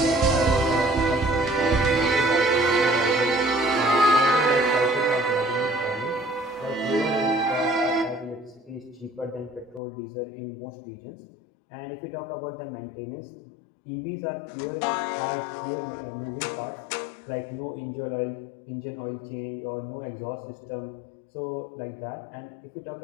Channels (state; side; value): drops out; right; at 9.8 s